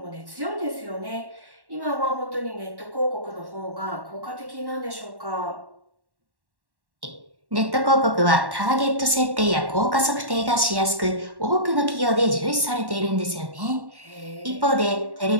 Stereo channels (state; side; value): late; left; 1.1 ms